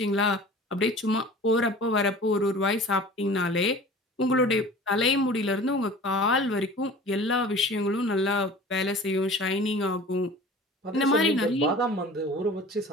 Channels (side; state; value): both; normal; correlation 0.42